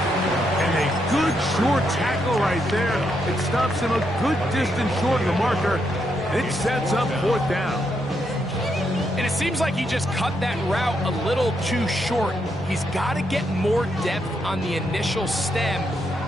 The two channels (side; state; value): both; normal; correlation 0.79